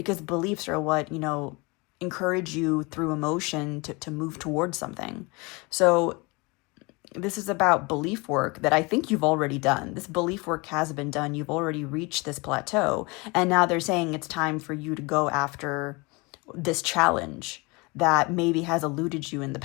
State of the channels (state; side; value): quieter; right; 27.0 dB